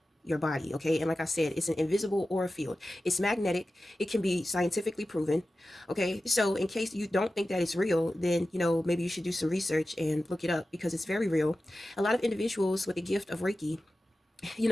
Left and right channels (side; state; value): both; normal; correlation 0.94